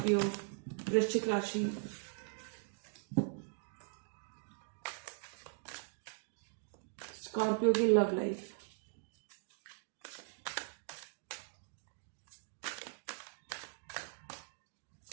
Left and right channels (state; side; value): silent; left; digital silence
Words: वृश्चिक राशि, स्कॉर्पियो की love life,